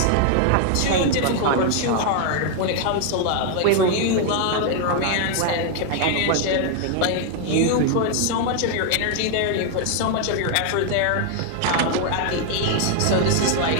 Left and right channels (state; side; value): different; both; correlation 0.00